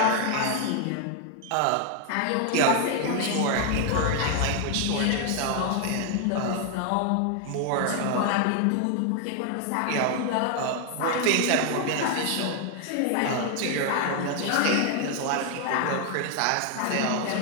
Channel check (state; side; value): different; both; correlation 0.00